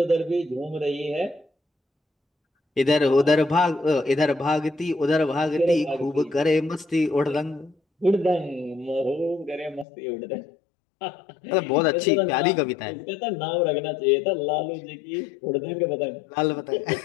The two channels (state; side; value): drops out; right; at 9.9 s